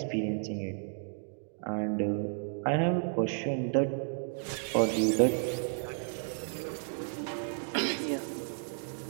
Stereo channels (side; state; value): left; silent; 56 dB below the other